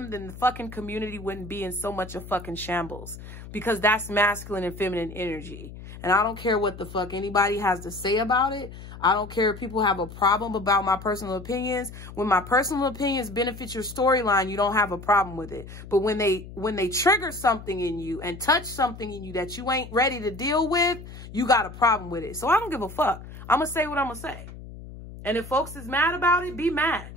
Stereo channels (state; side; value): noise; left; hum, 14 dB below the sound